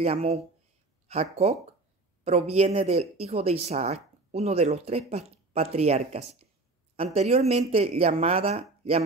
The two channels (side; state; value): left; quieter; 3.3 dB